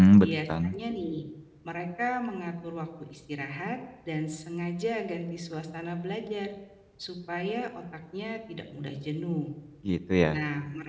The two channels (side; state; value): both; identical; correlation 1.00